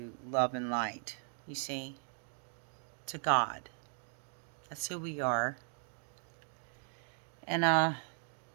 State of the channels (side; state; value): left; silent; 53 dB below the other